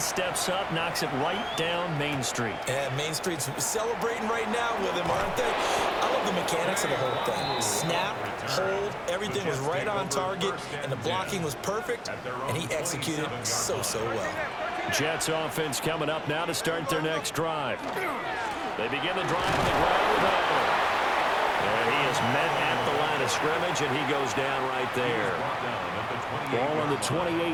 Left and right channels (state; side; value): identical; both; correlation 1.00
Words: up, knocks it right down Main Street. And Main Street's celebrating right now with him, aren't they? I love the mechanics of the whole thing. Snap, hold, everything was right on target, and the blocking was perfect, and he executed so well. Jets offense coming up now to start their next drive. They begin the drive on the ground with Allen. And he is met at the line of scrimmage, and he goes down right there. Ball on the